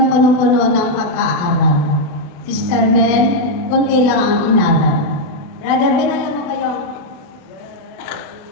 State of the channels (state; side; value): late; right; 28 ms